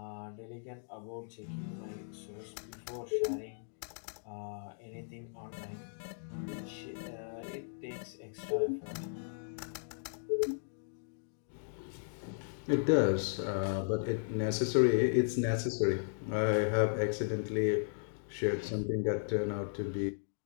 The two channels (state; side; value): silent; right; digital silence